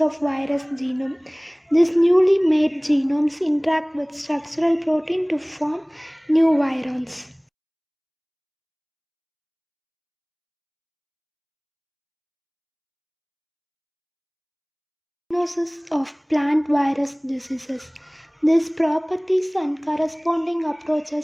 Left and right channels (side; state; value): both; identical; correlation 1.00